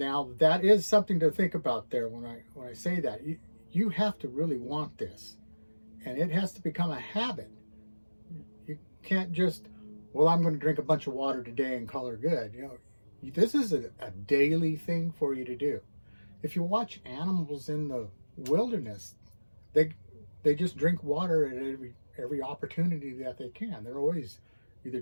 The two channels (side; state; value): both; inverted; correlation -1.00